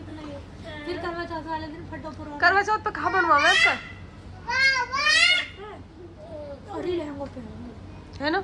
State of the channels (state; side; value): identical; both; correlation 1.00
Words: नहीं, फिर करवा चौथ वाले दिन फटो पुरो करवा चौथ पे कहाँ बनवावे उसका, और ही लहंगों पहनूंगी है ना?